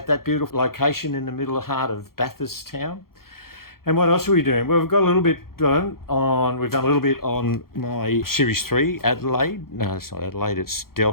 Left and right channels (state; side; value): late; right; 0.93 ms